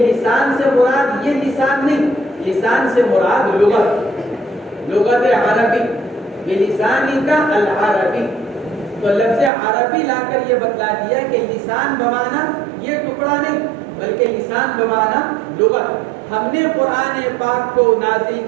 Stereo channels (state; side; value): drops out; left; at 9.5 s